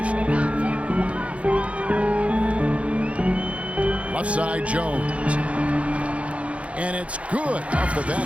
Left side, Jones. And it's good off the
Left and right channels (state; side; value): late; left; 0.063 ms